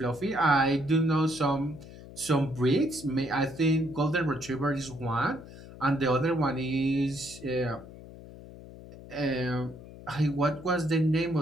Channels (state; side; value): noise; left; hum, 16 dB below the sound